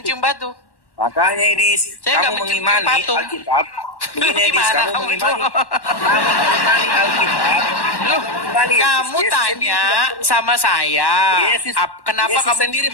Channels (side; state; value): right; late; 1.1 ms